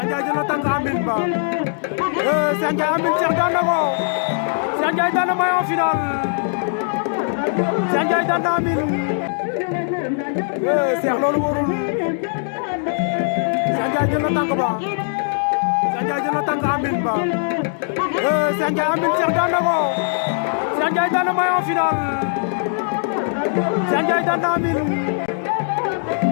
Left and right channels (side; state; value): right; silent; 65 dB below the other